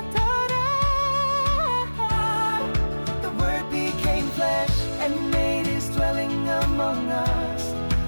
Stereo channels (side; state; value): both; inverted; correlation -1.00